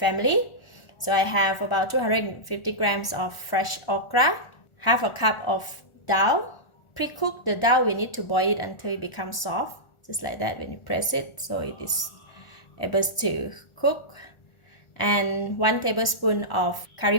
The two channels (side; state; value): right; late; 1.4 ms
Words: So I have about 250 grams of fresh okra, half a cup of dal. Pre-cook the dal, we need to boil it until it becomes soft, just like that when you press it, so it is able to cook. And 1 tablespoon of